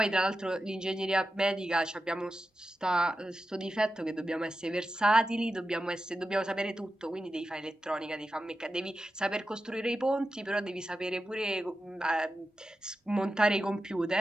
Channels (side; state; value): both; normal; correlation 0.91